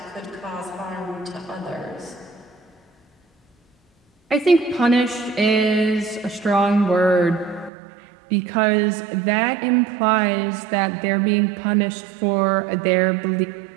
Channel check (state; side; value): drops out; left; at 7.7 s